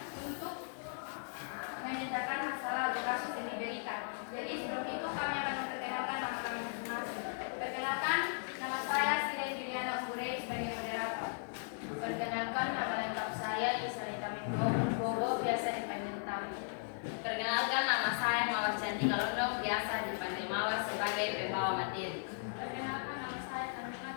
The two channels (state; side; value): silent; right; digital silence